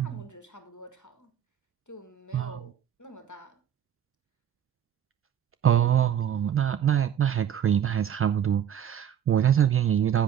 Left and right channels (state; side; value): quieter; left; 9.4 dB